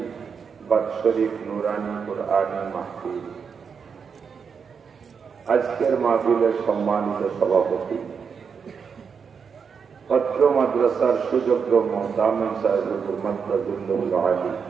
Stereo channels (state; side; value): quieter; left; 6.2 dB